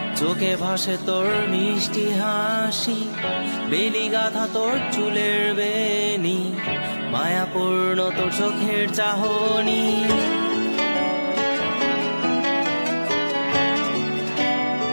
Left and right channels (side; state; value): both; inverted; correlation -1.00